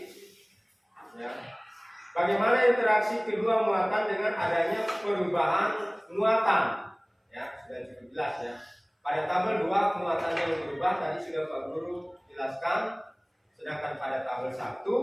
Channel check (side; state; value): both; identical; correlation 1.00